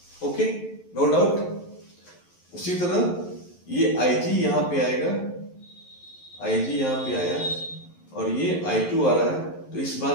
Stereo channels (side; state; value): right; late; 11 ms